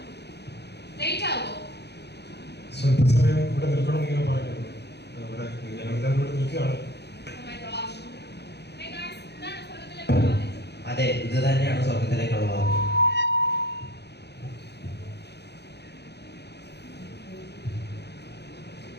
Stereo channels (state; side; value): late; right; 0.49 ms